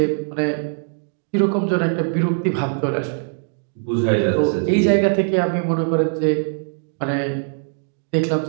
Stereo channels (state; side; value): silent; left; digital silence